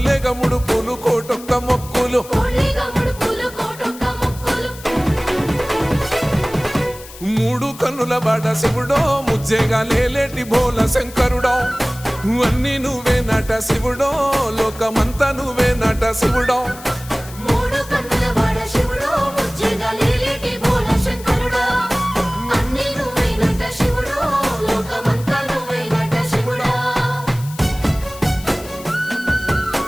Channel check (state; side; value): noise; left; hiss, 17 dB below the sound